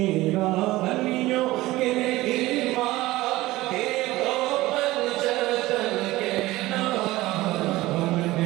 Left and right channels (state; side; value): quieter; left; 18.1 dB